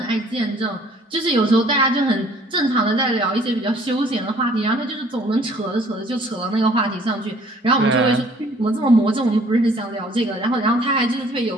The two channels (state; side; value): normal; both; correlation 0.57